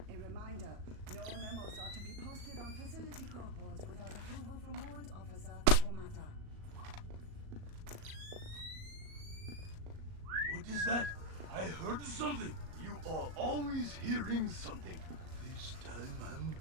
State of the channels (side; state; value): left; late; 37 ms